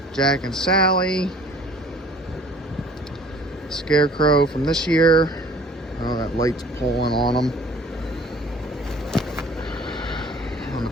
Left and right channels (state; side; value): normal; both; correlation 0.52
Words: Jack and Sally. Scarecrow from this year. Oh, that light's pulling on them. on the